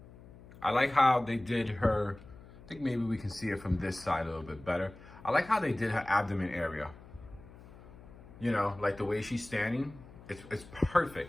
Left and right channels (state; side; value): noise; left; hum, 19 dB below the sound